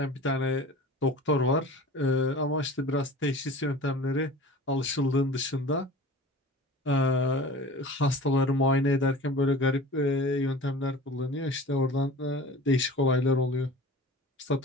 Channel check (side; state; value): both; normal; correlation 0.39